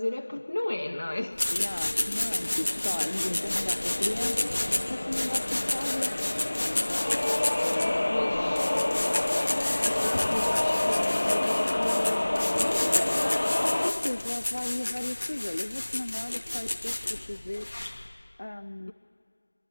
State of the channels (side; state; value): both; inverted; correlation -1.00